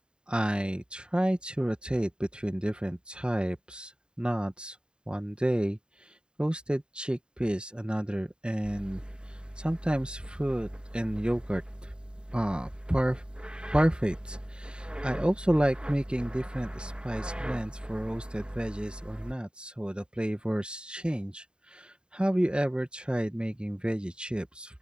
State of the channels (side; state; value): left; late; 0.049 ms